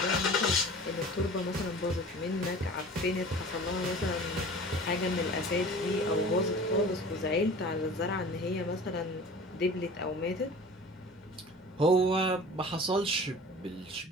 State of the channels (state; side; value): normal; both; correlation 0.41